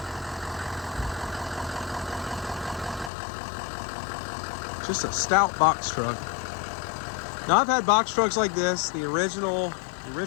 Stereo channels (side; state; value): right; drops out; at 3.1 s